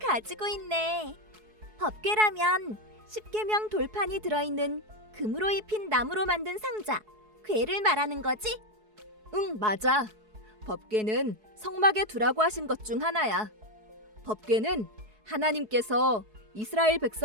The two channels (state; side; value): late; left; 4.7 ms